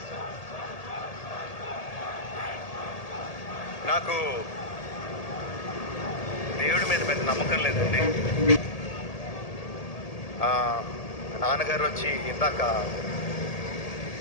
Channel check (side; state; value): right; late; 1.8 ms